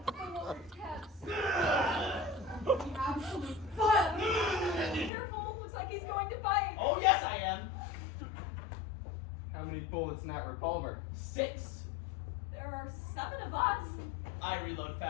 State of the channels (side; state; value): right; drops out; at 5.1 s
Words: Absolute butt. Careful, looks like he's going to bite. Oh, yes, I am. How many bullets in that revolver? 6. There are 7 of us. I reload